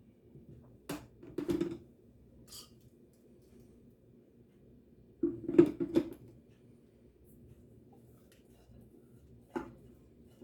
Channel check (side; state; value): both; identical; correlation 1.00